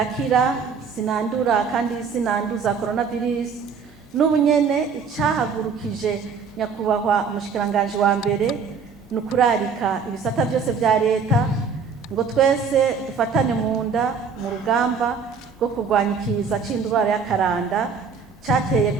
sinandura kandi sinanduza coronavirus. N'ubunyene icahagurukije nyakubahwa umushikiranganji wa mbere nukurarika ibisata byose vya leta ngo twese dufatane mu nda mu rugamba rwo kurwanya ikiza c'indwara y'akaranda cateye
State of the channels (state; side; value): quieter; left; 5.7 dB